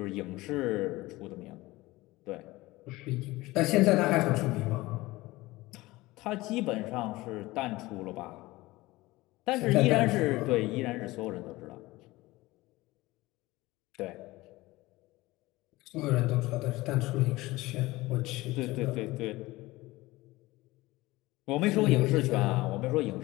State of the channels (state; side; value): quieter; right; 19.7 dB